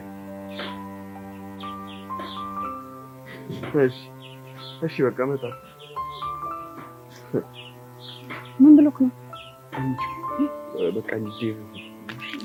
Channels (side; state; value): both; identical; correlation 1.00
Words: እሺ በቃ መጣ። ምን ብሎክ ነው? በቃ ዴቭ